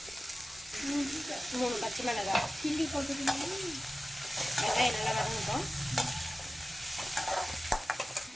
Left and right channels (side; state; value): both; normal; correlation 0.96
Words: மூணு பச்சை மிளகாய், சில்லி போட்டுக்கணும். வெங்காயம் நல்லா வதங்கட்டும்.